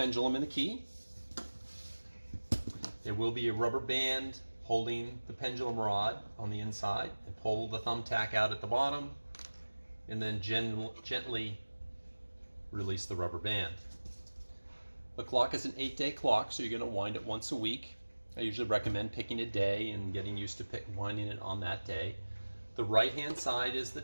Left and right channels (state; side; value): inverted; both; correlation -1.00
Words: and the key. There will be a rubber band holding the pendulum rod on the inside, and pull the thumbtack out at the bottom and then gently release the rubber band. The clock is an 8-day clock, so you're going to wind it once a week. I usually recommend picking a day and getting used to winding it on that day. The right hand side is the